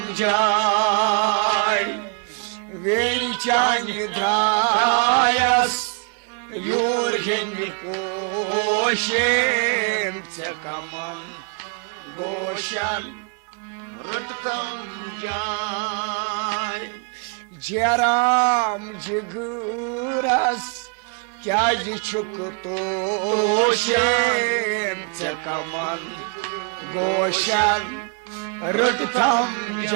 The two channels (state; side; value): quieter; left; 37.8 dB